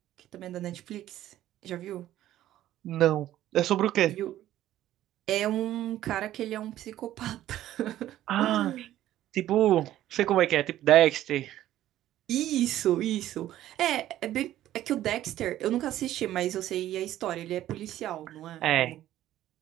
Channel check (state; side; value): quieter; left; 13.3 dB